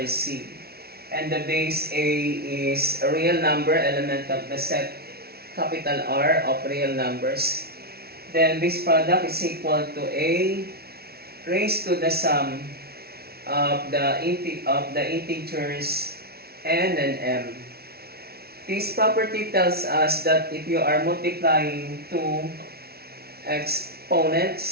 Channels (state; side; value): late; left; 0.45 ms